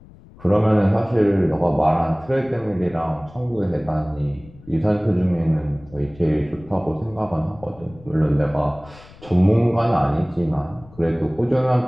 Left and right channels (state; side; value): noise; left; rumble, 23 dB below the sound